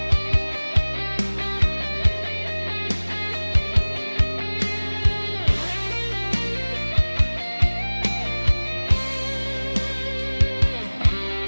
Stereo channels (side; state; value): both; inverted; correlation -1.00